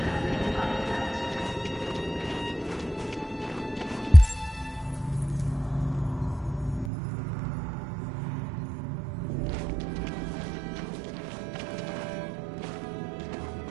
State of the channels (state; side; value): drops out; left; at 6.9 s